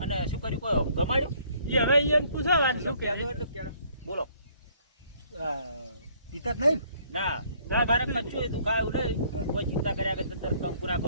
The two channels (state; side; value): inverted; both; correlation -0.62